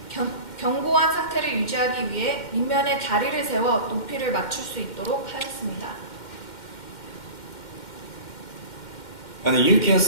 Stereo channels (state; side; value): late; right; 2.1 ms